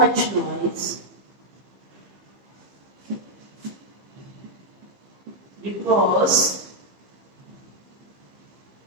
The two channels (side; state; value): left; late; 15 ms